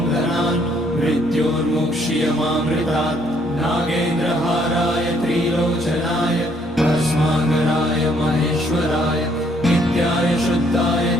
मृत्योर्मुक्ष्यमामृतात्। नागेन्द्रहाराय त्रिलोचनाय भस्माकराय महेश्वराय नित्याय शुद्धाय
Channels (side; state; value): both; normal; correlation 0.67